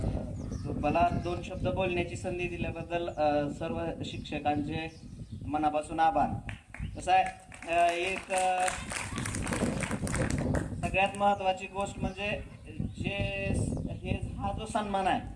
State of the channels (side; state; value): both; identical; correlation 1.00